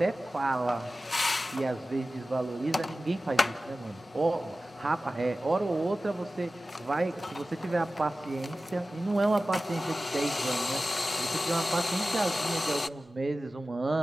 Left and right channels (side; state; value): both; normal; correlation 0.95